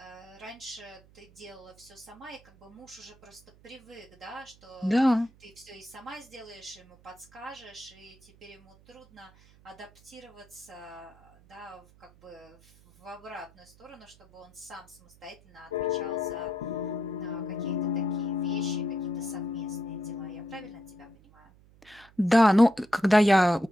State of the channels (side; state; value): right; noise; hum, 26 dB below the sound